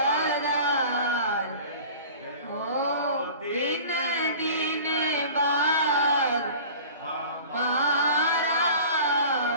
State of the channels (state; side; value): inverted; both; correlation -0.42